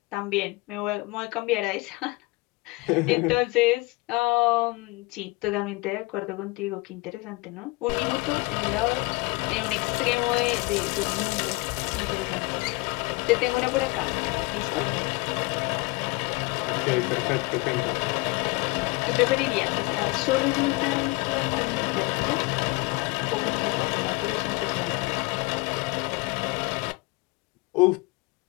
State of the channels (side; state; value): right; quieter; 24.6 dB